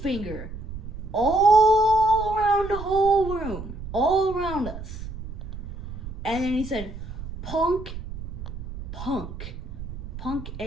all around the whole room, all around us. And then he said, Punk.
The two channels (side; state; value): right; noise; rumble, 9 dB below the sound